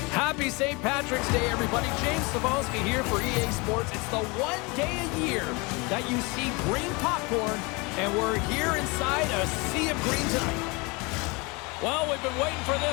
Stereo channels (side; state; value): right; quieter; 27.4 dB